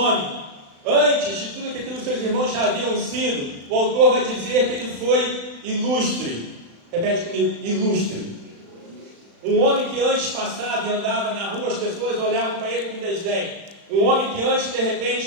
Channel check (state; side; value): late; left; 35 ms